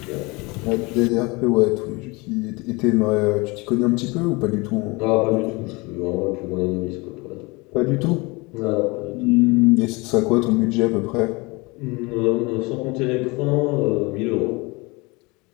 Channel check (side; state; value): right; quieter; 25.7 dB